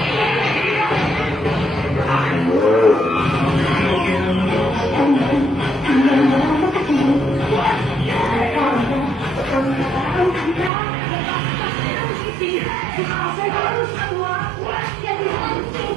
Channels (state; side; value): drops out; left; at 10.7 s